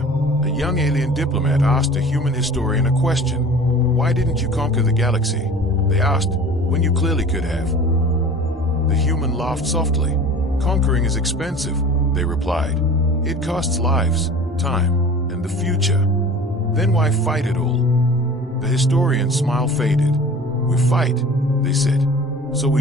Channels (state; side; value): normal; both; correlation 0.41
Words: a young alien diplomat asked a human historian a question. "Why didn't you conquer the galaxy?" they asked, "when you clearly could have." The human laughed softly. "Conquering is expensive," they replied. "It costs lives, time, and the future. Then why fight at all?" The historian's smile faded. "We fight," they said, "so we